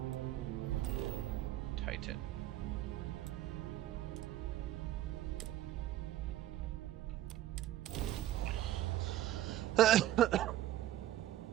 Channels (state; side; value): quieter; left; 13.7 dB